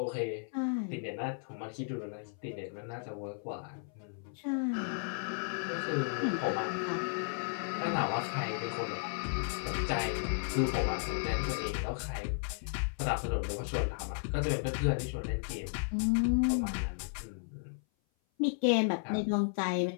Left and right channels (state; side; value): silent; right; 55 dB below the other